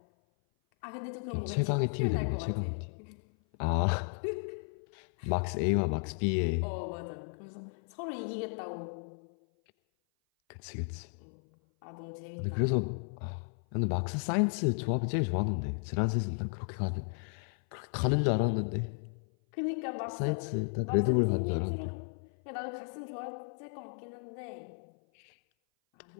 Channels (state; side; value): silent; right; 55 dB below the other